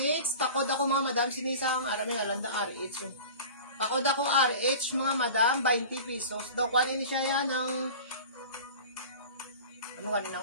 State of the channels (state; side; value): inverted; both; correlation -0.38